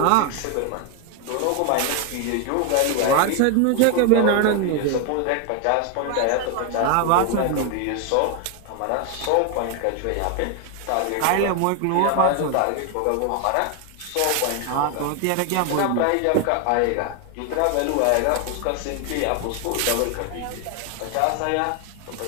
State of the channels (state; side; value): different; both; correlation 0.01